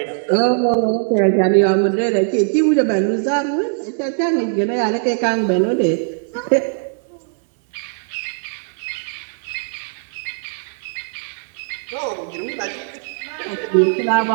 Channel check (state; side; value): silent; left; digital silence